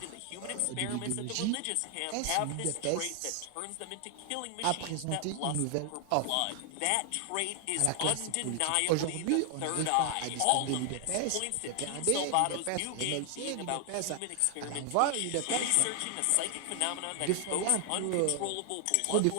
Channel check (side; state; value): both; different; correlation 0.00